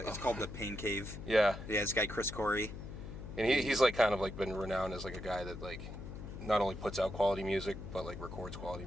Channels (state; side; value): noise; left; hum, 10 dB below the sound